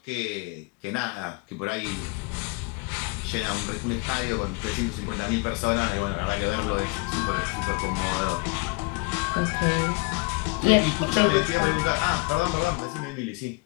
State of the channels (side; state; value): right; quieter; 28.7 dB